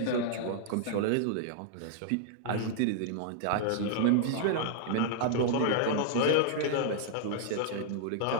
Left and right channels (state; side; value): different; both; correlation -0.01